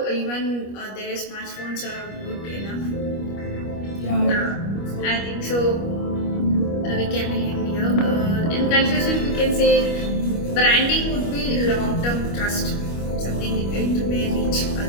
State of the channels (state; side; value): late; right; 25 ms